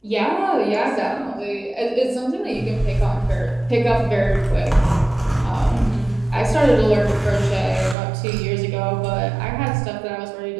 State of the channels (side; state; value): left; drops out; at 8.0 s